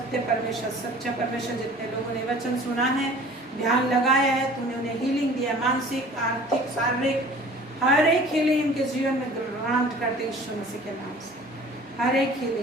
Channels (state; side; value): normal; both; correlation 0.47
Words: परमेश्वर, सच्चा परमेश्वर। जितने लोगों ने वचन सुना है, ध्यान लगाया है, तूने उन्हें हीलिंग दिया, मानसिक, आर्थिक, शारीरिक, हर एक हीलिंग इनके जीवन में ग्रांट करते यीशु मसीह के नाम से। हर एक